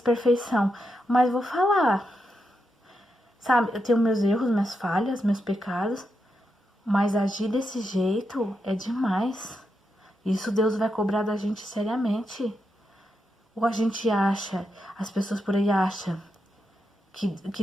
mas vou falar. Sabe, eu tenho meus erros, minhas falhas, meus pecados, mas agir desse jeito é demais. Isso Deus vai cobrar da gente seriamente. Ou a gente acha, as pessoas por aí acham que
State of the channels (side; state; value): both; normal; correlation 0.85